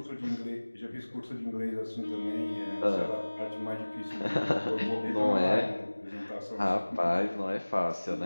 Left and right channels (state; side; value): inverted; both; correlation -1.00